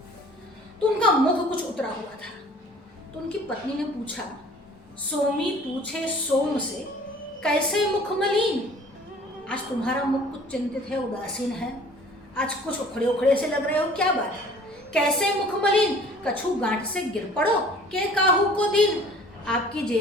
तो उनका मुख कुछ उतरा हुआ था। तो उनकी पत्नी ने पूछा, सोमी पूछे सोम से, कैसे मुख मलिन? आज तुम्हारा मुख कुछ चिंतित है, उदासीन है, आज कुछ उखड़े उखड़े से लग रहे हो, क्या बात है? कैसे मुख मलिन? कछु गांठ से गिर पड़ो के काहू को दिन? आपकी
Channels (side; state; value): both; normal; correlation 0.50